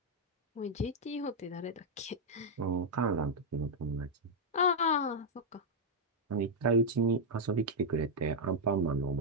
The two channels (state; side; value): normal; both; correlation -0.03